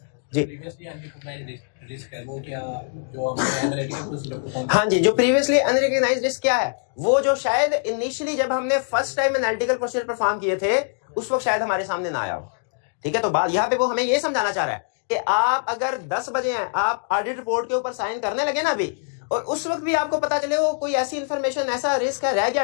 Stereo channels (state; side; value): silent; right; digital silence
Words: जी। हाँ जी, जो प्रीवियसली अनरिकॉग्नाइज्ड रिस्क क्या है, वो जो शायद इनिशियली जब हमने first time analytical procedure perform किए थे उस वक्त शायद हमारे सामने ना आया हो, ठीक है। तो बात यहाँ पे वो हमें ये समझाना चाह रहा है कि आप अगर 10 बजे हैं, आप ऑडिट रिपोर्ट के ऊपर साइन करने लगे ना अभी, और उस वक्त भी आपको पता चले वो कोई ऐसी इंफॉर्मेशन, ऐसा रिस्क है रह